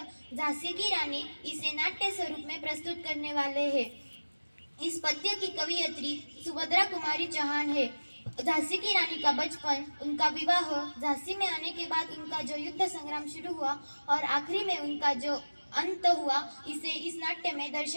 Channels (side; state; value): both; inverted; correlation -1.00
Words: झांसी की रानी इसे नाट्य स्वरूप में प्रस्तुत करने वाले हैं। इस पद्य की कवियत्री सुभद्रा कुमारी चौहान है। झांसी की रानी का बचपन, उनका विवाह, झांसी में आने के बाद उनका जो युद्ध संग्राम शुरू हुआ और आखिरी में उनका जो अंत हुआ, इसे इस नाट्य में